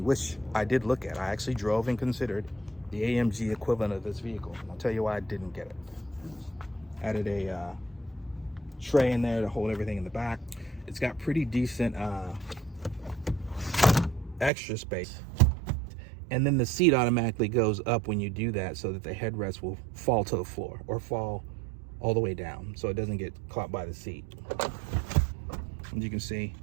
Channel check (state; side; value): drops out; left; at 14.5 s